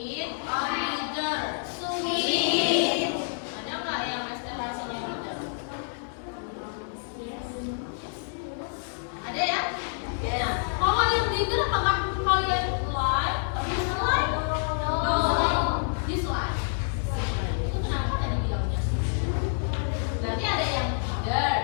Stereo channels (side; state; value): right; silent; digital silence